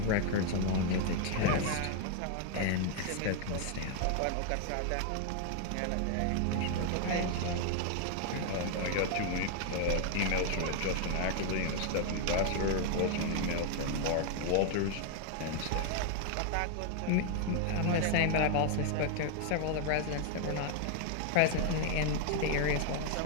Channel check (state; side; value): different; both; correlation 0.00